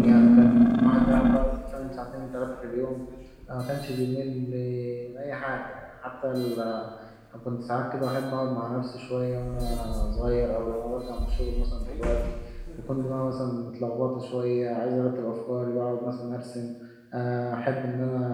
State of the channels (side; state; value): both; identical; correlation 1.00